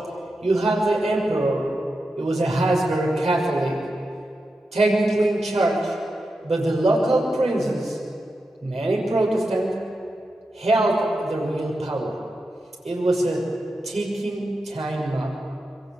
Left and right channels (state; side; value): normal; both; correlation 0.89